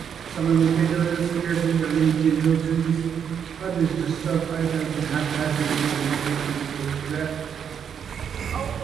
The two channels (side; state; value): left; quieter; 7.8 dB